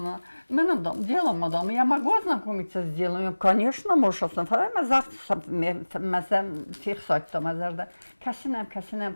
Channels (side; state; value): both; inverted; correlation -1.00